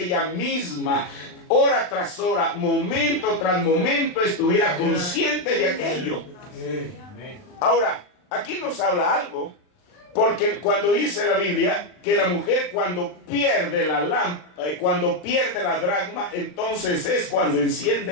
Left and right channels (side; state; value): right; late; 39 ms